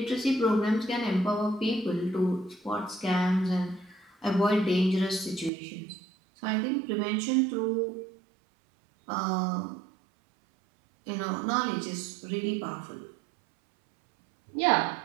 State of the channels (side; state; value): left; drops out; at 5.5 s